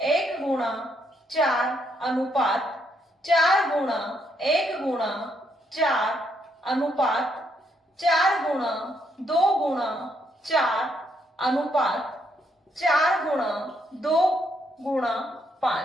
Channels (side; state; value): both; normal; correlation 0.75